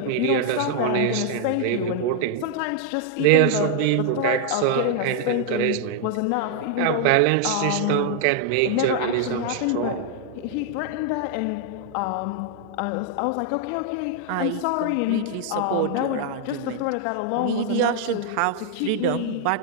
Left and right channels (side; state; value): both; different; correlation -0.01